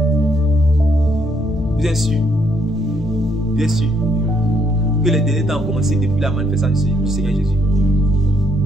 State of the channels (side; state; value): both; normal; correlation 0.71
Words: Vous êtes sûr? bien sûr que les derniers temps ont commencé depuis la manifestation du Seigneur Jésus.